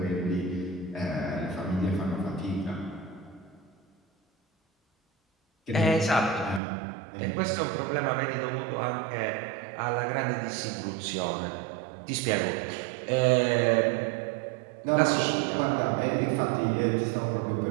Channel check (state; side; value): drops out; left; at 6.6 s